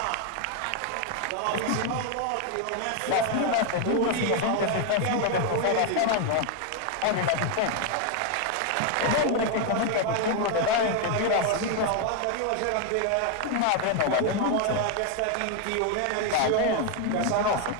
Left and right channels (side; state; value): both; different; correlation 0.01